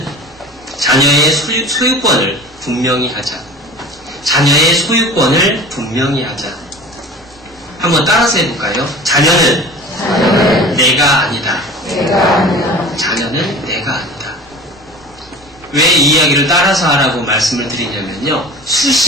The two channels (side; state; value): both; normal; correlation 0.38